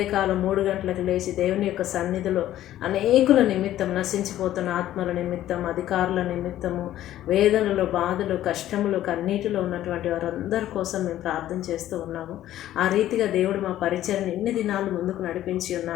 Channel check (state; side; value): quieter; right; 13.1 dB